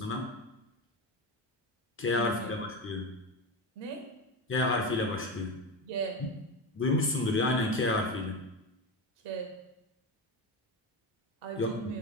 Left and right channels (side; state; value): both; normal; correlation 0.19